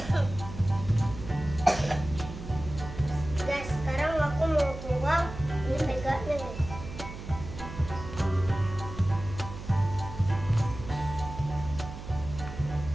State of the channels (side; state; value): right; noise; hum, 11 dB below the sound